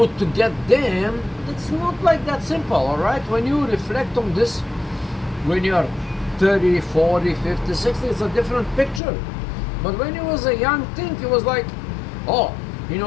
to get them? It's not like that simple, all right? When you reflect on this, when you're 30, 40, 50, 60, it's a different picture. But when you was a young thing, it was like, oh, you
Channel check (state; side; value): drops out; right; at 9.0 s